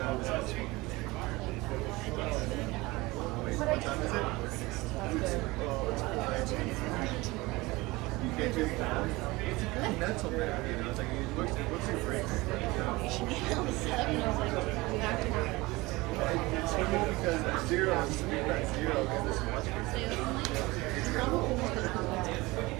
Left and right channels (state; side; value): quieter; left; 21.8 dB